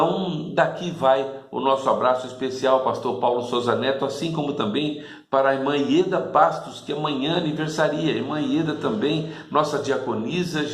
daqui vai o nosso abraço especial ao pastor Paulo Souza Neto, assim como também para a irmã Ieda Bastos, que amanhã aniversaria. A irmã Ieda também, nossa diaconisa,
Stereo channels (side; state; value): both; identical; correlation 1.00